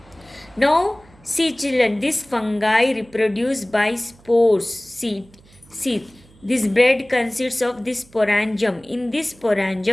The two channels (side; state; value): right; noise; hum, 27 dB below the sound